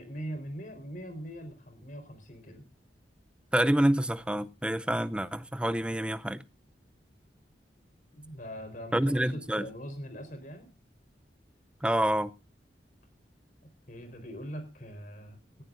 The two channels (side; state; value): both; normal; correlation 0.91